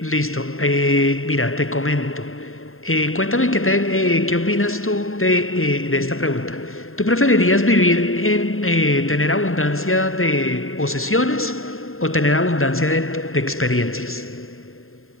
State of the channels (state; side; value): late; right; 0.61 ms